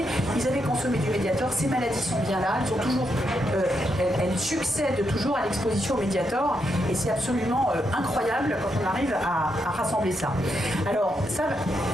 Ils avaient consommé du Mediator, ces maladies sont bien là, elles, sont toujours, elles succèdent toujours à l'exposition au Mediator, et c'est absolument incroyable quand on arrive à rassembler ça. Alors, ça,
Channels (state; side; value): normal; both; correlation 0.81